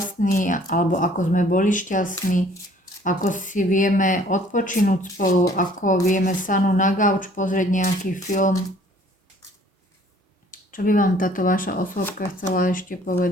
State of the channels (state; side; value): normal; both; correlation 0.56